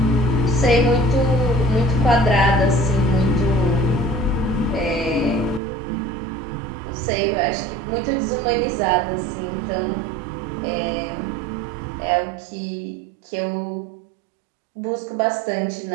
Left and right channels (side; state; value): left; drops out; at 5.6 s